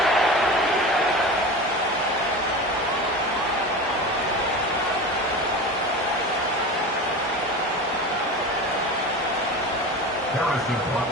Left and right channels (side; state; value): both; normal; correlation 0.30